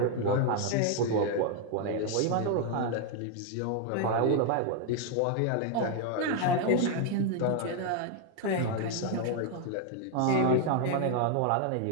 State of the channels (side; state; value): both; different; correlation 0.00